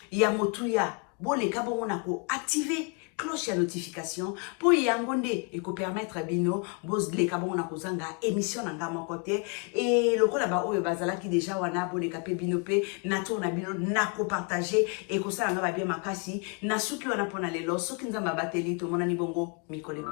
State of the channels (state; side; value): quieter; right; 34.6 dB